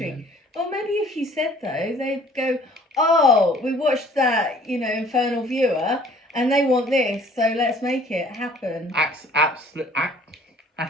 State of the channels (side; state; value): both; normal; correlation 0.55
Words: Well, maybe if you said though, they'd go, "Oh, we watched that, Infernal Viewer, and they want this, so let's make it happen."